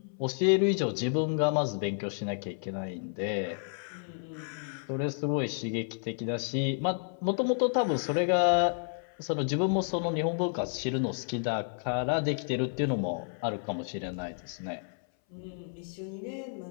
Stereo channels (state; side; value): silent; right; 57 dB below the other